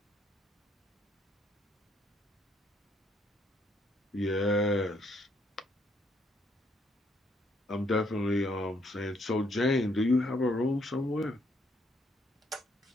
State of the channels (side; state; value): both; normal; correlation 0.71